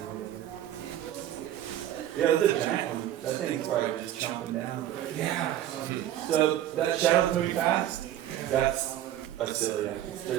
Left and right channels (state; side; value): quieter; left; 12.2 dB